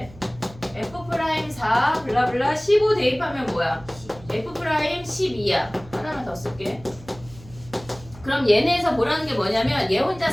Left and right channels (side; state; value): right; noise; hum, 20 dB below the sound